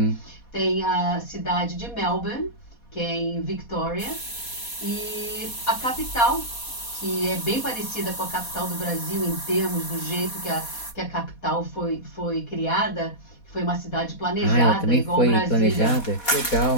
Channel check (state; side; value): late; right; 4.2 ms